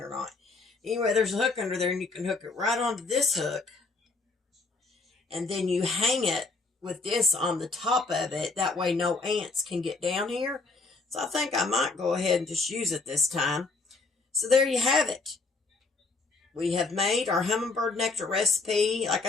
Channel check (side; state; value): right; quieter; 3.8 dB